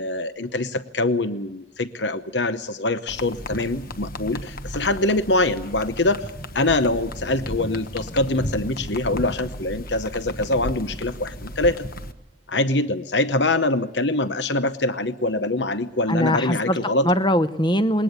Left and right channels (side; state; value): both; normal; correlation 0.11